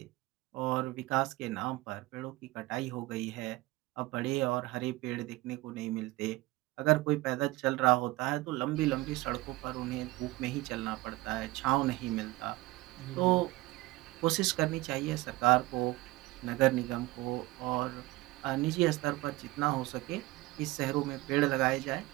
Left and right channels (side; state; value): left; quieter; 19.9 dB